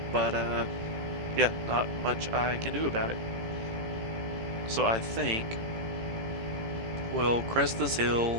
But, yeah, not much I can do about it. So I think we'll crest this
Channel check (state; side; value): late; left; 18 ms